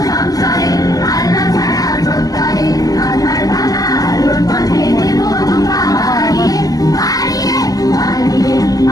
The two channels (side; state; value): right; late; 0.17 ms